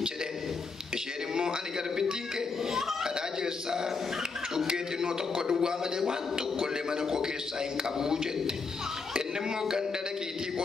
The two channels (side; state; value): right; quieter; 4.6 dB